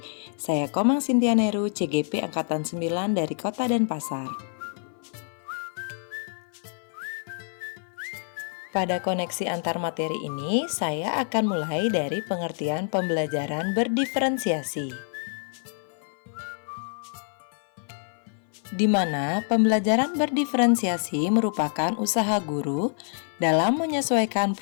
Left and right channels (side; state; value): right; silent; 56 dB below the other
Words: Saya Komang Cynthia Neru, CGP Angkatan 9 dari Kota Denpasar. Pada koneksi antar materi ini, saya akan mulai dari pengertian pembelajaran berdiferensiasi, di mana pembelajaran berdiferensiasi merupakan usaha guru dalam menyesuaikan